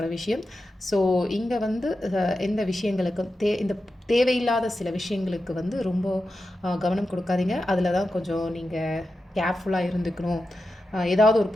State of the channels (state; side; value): normal; both; correlation 0.91